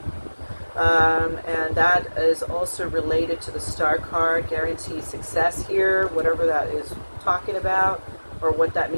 And that is also related to the star card, guaranteed success here, whatever that is talking about or what that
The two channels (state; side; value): inverted; both; correlation -1.00